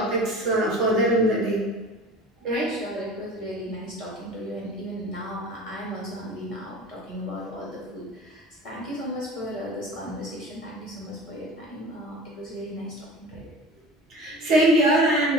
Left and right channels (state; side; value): normal; both; correlation 0.38